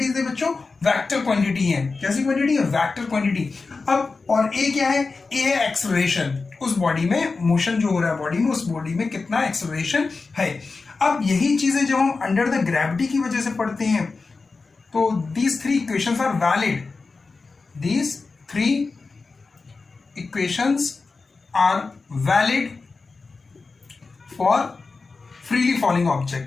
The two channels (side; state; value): right; quieter; 4.1 dB